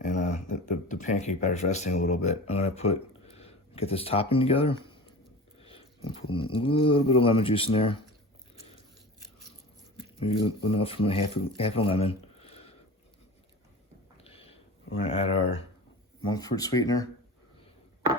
the pancake batter's resting a little bit, I'm gonna get this topping together. And put a little bit of lemon juice in there. Maybe enough from half a lemon. We're gonna add our monk fruit sweetener.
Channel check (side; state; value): both; normal; correlation 0.34